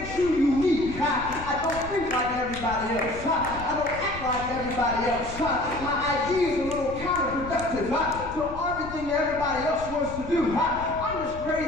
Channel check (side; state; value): left; noise; rumble, 12 dB below the sound